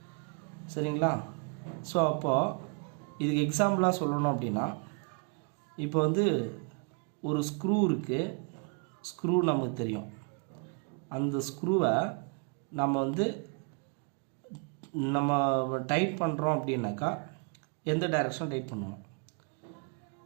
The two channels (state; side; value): quieter; left; 38.4 dB